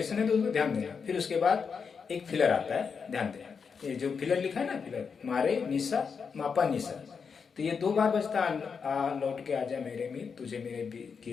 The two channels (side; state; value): right; quieter; 5.9 dB